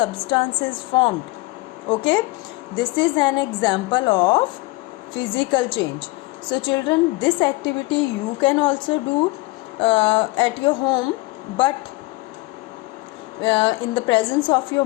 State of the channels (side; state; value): right; quieter; 22.2 dB